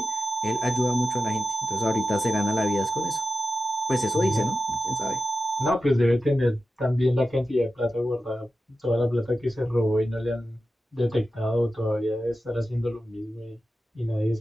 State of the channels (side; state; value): both; normal; correlation 0.92